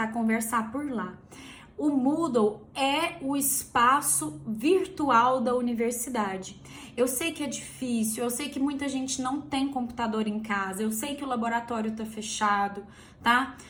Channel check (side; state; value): both; identical; correlation 1.00